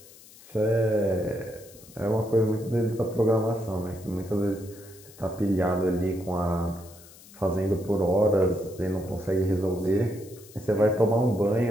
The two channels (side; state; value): left; noise; hiss, 22 dB below the sound